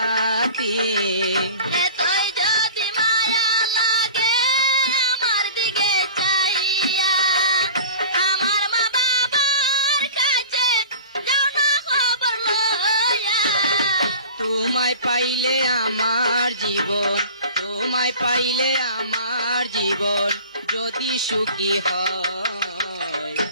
এতই যদি মায়া লাগে আমার দিকে চাহিয়া, আমার মা বাবার কাছে যাও না খবর লইয়া। তোমায় পাইলে আমার জীবন, তোমায় পাইলে আমার জীবন যদি সুখী হয়,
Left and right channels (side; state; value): both; inverted; correlation -0.40